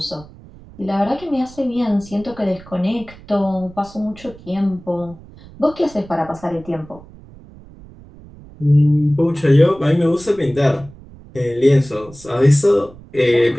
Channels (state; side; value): noise; right; rumble, 21 dB below the sound